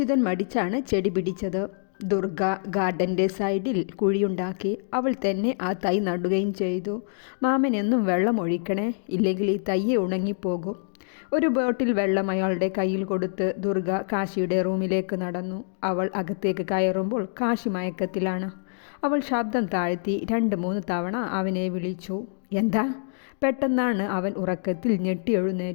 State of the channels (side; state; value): right; silent; digital silence